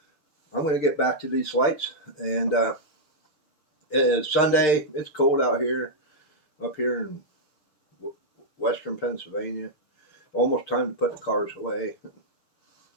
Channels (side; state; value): right; late; 6.6 ms